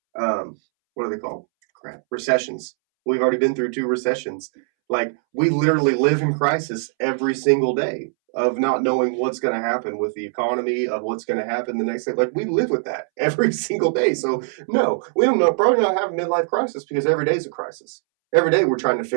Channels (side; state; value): left; silent; 65 dB below the other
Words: what are they called? Recessions. We've already been through 2 recessions. Like, we literally live in crisis every single day of not knowing what's going to happen with the economy, of what's going to happen the next day. Like, we live with that every single day. So, no, we probably not have a midlife crisis because every day is a crisis. Every day we're trying to